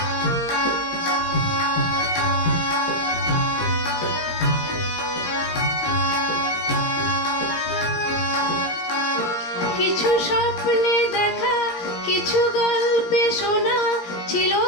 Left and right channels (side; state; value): right; late; 17 ms